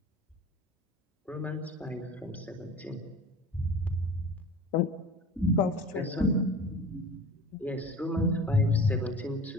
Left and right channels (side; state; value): both; normal; correlation 0.39